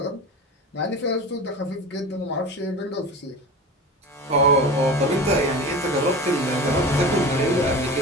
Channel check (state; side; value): normal; both; correlation 0.31